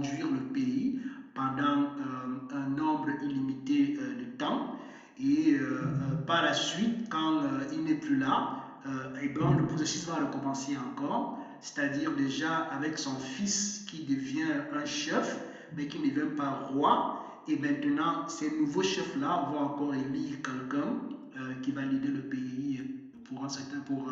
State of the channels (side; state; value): both; identical; correlation 1.00